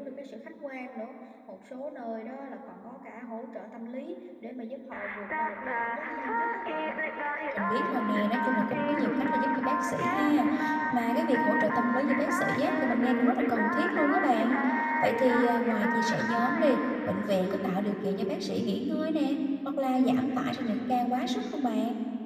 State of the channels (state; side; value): identical; both; correlation 1.00